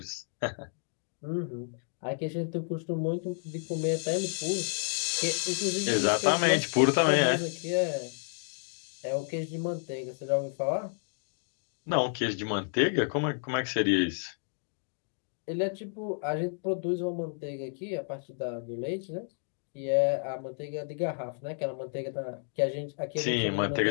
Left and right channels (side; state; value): right; silent; digital silence